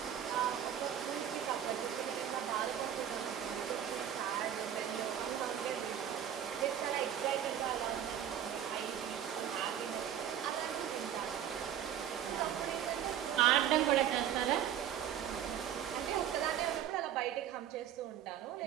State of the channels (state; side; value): quieter; left; 10.0 dB